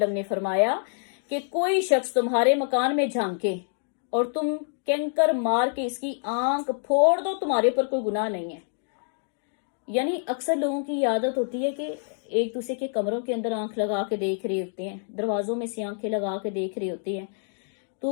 نے فرمایا کہ کوئی شخص تمہارے مکان میں جھانکے اور تم کینکر مار کے اس کی آنکھ پھوڑ دو، تمہارے پر کوئی گناہ نہیں ہے۔ یعنی اکثر لوگوں کی عادت ہوتی ہے کہ ایک دوسرے کے کمروں کے اندر آنکھ لگا کے دیکھ رہے ہوتے ہیں، دروازوں میں سے آنکھیں لگا کے دیکھ رہے ہوتے ہیں،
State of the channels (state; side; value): silent; right; digital silence